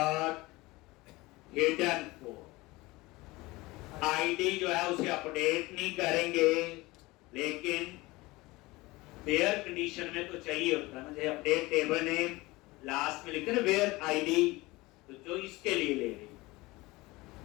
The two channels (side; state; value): right; quieter; 21.4 dB